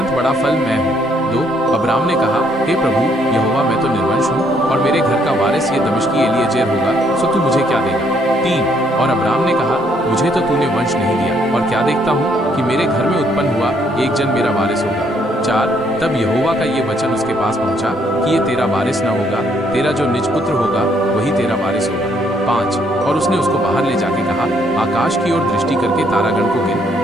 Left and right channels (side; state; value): both; normal; correlation 0.69